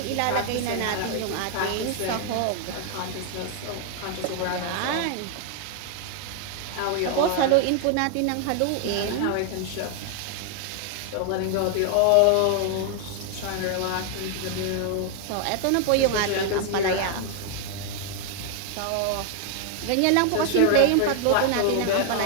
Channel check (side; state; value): both; different; correlation 0.00